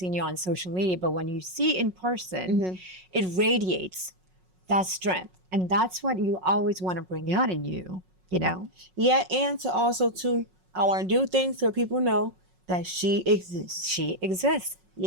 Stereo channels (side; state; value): left; late; 5.4 ms